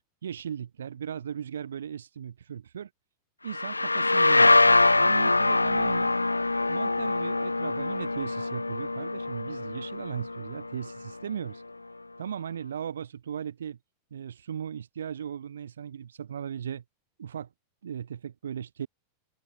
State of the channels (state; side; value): inverted; both; correlation -0.95